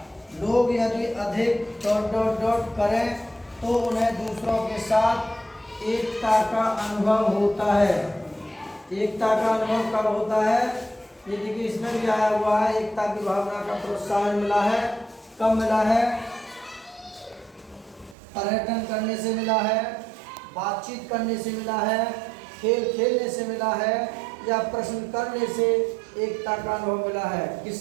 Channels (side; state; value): left; drops out; at 18.2 s